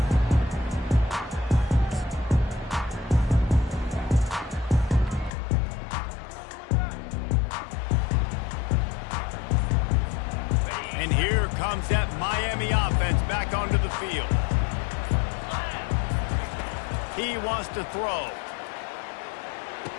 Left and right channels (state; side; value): drops out; right; at 5.3 s